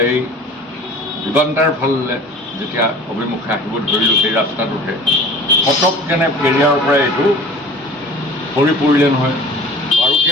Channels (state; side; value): normal; both; correlation 0.43